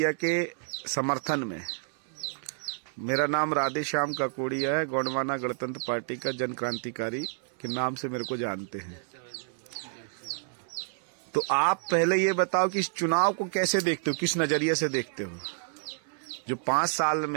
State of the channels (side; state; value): left; silent; 58 dB below the other